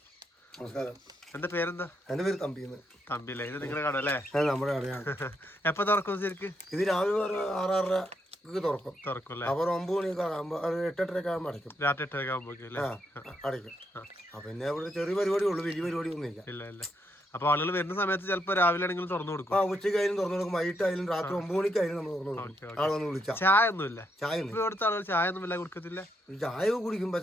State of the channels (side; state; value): both; normal; correlation 0.78